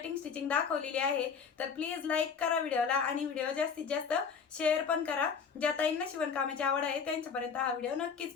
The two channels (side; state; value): right; quieter; 6.1 dB